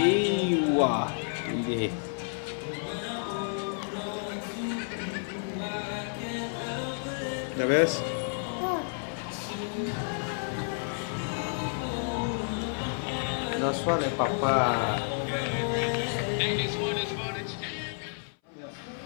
wow, đi. The best. That's what Papa.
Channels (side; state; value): right; silent; 58 dB below the other